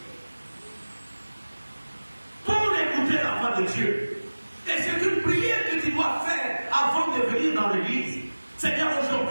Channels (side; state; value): both; inverted; correlation -1.00